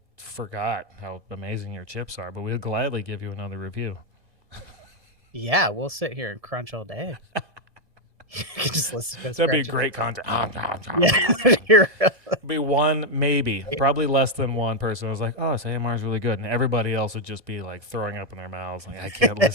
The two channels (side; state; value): left; late; 1.7 ms